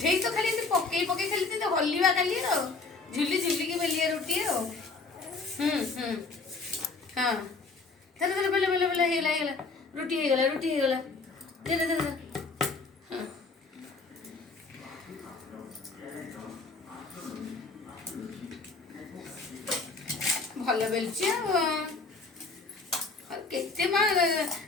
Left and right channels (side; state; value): right; quieter; 4.0 dB